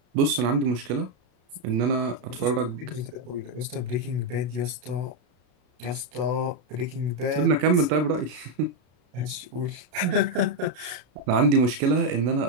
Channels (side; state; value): left; late; 33 ms